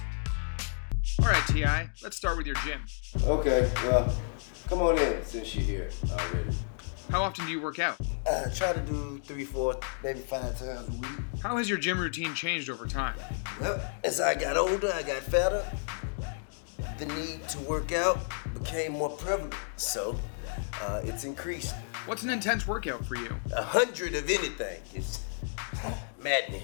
Alright T.I., let's start with your gym. Okay, well, come on in since you're here already. How often do you work out? Try to do 3, 4, maybe 5 times a week. How has your gym routine changed over time? Well, as I got older, I got fatter. The need to work out became more prevalent, so it's increased. What's an intense workout for you? 100 of anything is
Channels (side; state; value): right; silent; digital silence